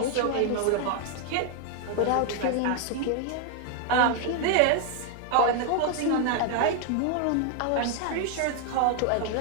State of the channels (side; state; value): both; different; correlation 0.00